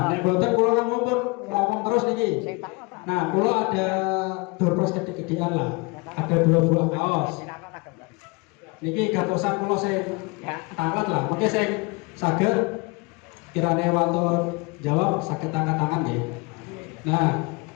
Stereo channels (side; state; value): right; quieter; 27.9 dB